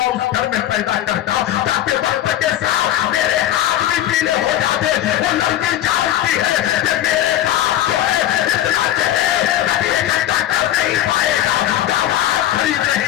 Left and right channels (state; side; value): quieter; right; 12.8 dB